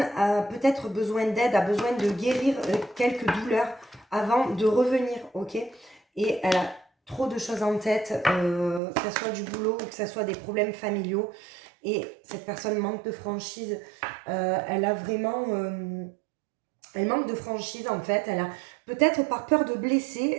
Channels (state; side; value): drops out; left; at 8.8 s